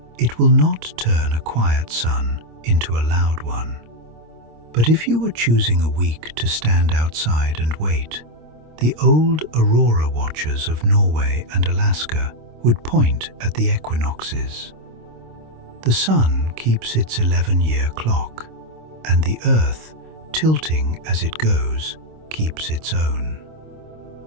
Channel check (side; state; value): left; late; 26 ms